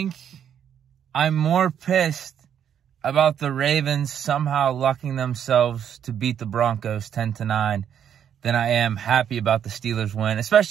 I'm more pissed about the Ravens somehow lucking themselves to beat the Broncos 10-9 than I am happy about the Steelers win,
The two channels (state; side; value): quieter; left; 9.0 dB